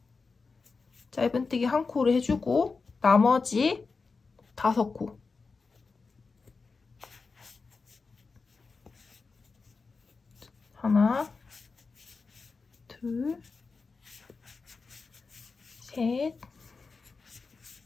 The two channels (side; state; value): right; quieter; 4.5 dB